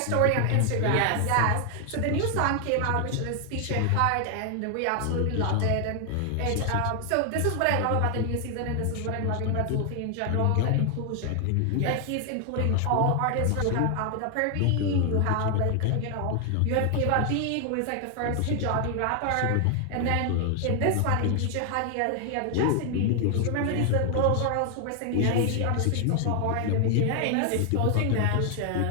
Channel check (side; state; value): both; different; correlation 0.00